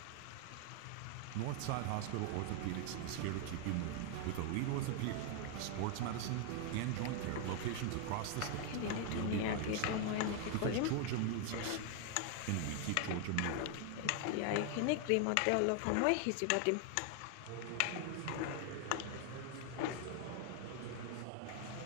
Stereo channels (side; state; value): both; different; correlation 0.00